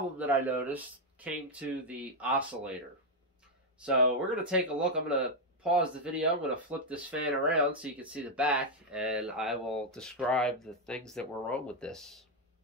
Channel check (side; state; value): both; normal; correlation 0.02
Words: that I noticed came to the oscillator. So we're going to take a look. I'm going to pause the video. I'm going to flip this fan around so you can see the back, and I will describe the things that were wrong with this.